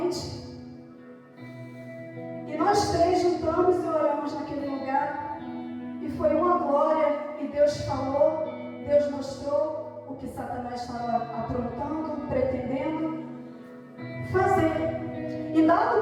E nós três juntamos e oramos naquele lugar. E foi uma glória. E Deus falou, Deus mostrou o que Satanás estava aprontando, pretendendo fazer. E dado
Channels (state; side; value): identical; both; correlation 1.00